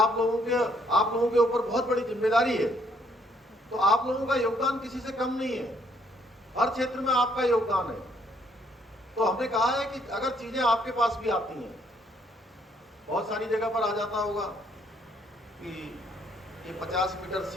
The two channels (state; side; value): normal; both; correlation 0.68